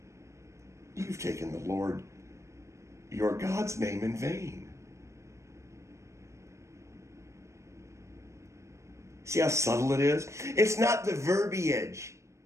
You've taken the Lord, your God's name in vain. See how subtle it is? It's not the verbiage.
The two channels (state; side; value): late; left; 0.14 ms